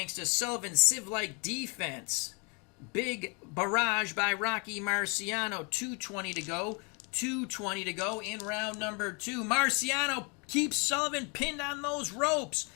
to Sullivan's sieve-like defense. Big barrage by Rocky Marciano. 2:20 to go. 2:20 to go in round number 2. Marciano keeps Sullivan pinned on those ropes.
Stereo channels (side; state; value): right; quieter; 33.1 dB